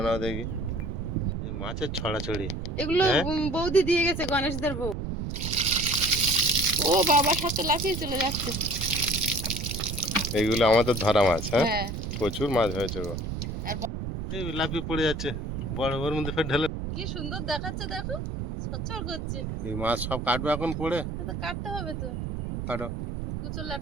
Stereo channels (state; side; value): noise; right; rumble, 4 dB below the sound